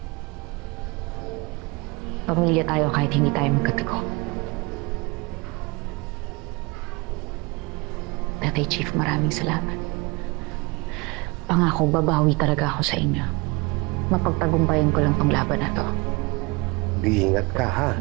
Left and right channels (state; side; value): quieter; left; 26.2 dB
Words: Pamilya tayo kahit hindi tayo magkatago. Tatay Chief, maraming salamat. Pangako, babawi talaga ako sa inyo. Mapagtagumpayan ko lang tong laban na to. Iingat ka ha.